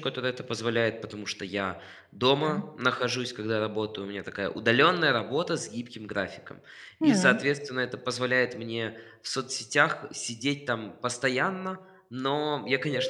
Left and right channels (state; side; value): identical; both; correlation 1.00